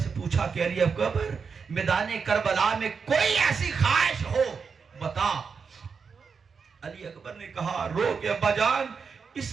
پوچھا کہ علی اکبر، میدان کربلا میں کوئی ایسی خواہش ہو بتا۔ علی اکبر نے کہا رو کہ ابا جان، اس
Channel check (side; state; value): left; quieter; 5.6 dB